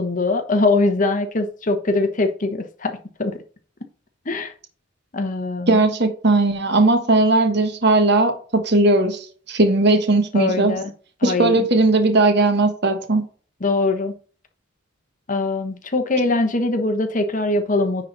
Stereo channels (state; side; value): normal; both; correlation 0.25